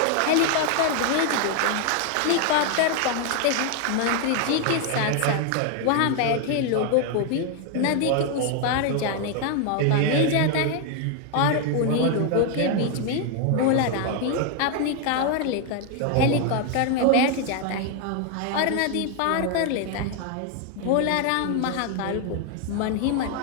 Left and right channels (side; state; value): both; different; correlation 0.00